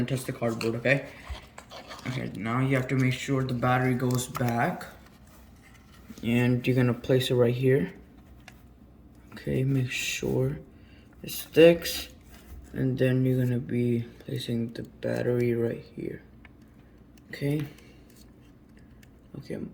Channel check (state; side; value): identical; both; correlation 1.00